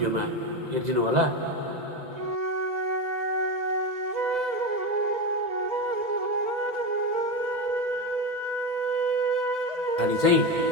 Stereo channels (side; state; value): left; late; 1.8 ms